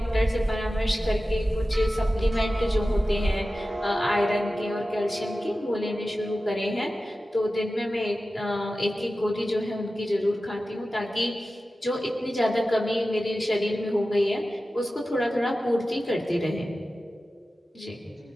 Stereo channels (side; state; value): both; normal; correlation 0.94